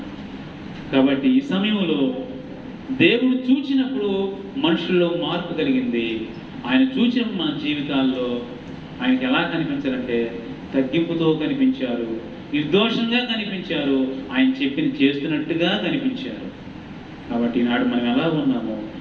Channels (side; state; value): both; identical; correlation 1.00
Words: కాబట్టి ఈ సమయంలో దేవుడు చూచినప్పుడు మనుషుల్లో మార్పు కలిగింది. ఆయన చూసినప్పుడు మన జీవితాల్లో ఆయనకి ఎలా కనిపించారంటే తగ్గింపుతో కనిపించారు, నిర్దోషంగా కనిపించారు, ఆయన చెప్పింది చేస్తున్నట్టుగా కనిపించారు. కాబట్టి ఈనాడు మనం ఎలా ఉన్నామో